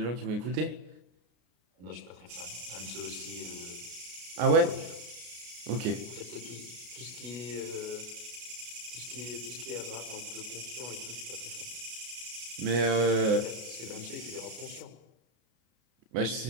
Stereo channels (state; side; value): late; left; 33 ms